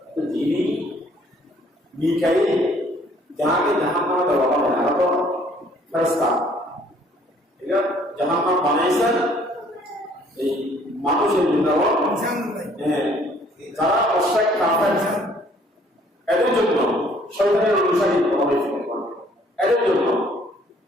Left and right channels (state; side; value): normal; both; correlation 0.60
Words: যিনি মিকাইল যাকে জাহান্নামে দেওয়া হবে না, তো ফেরেশতা এটা জাহান্নাম বানাইছেন এই মানুষের জন্য, যারা অশ্বাক কাফের এদের জন্য, শয়তানের অনুসারী হবে এদের জন্য।